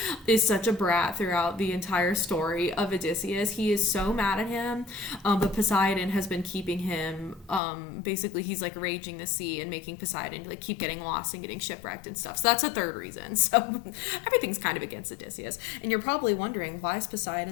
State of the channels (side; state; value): right; drops out; at 7.6 s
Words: is such a brat throughout the entire story of Odysseus. He is so mad at him, but Poseidon has been keeping him, basically he's raging the sea and making Poseidon keep getting lost and getting shipwrecked and stuff. So that's a third reason. So everything's kind of against Odysseus. And you're probably wondering, why is